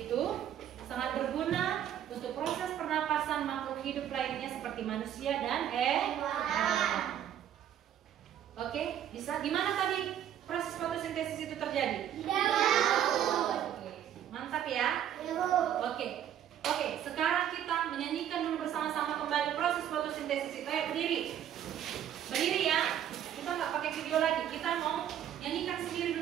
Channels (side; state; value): left; quieter; 10.3 dB